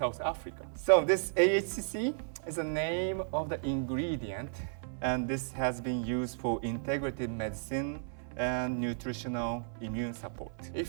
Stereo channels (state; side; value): silent; left; 55 dB below the other